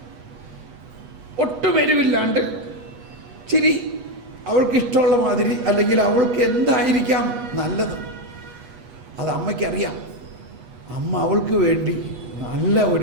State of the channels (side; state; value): left; late; 8.2 ms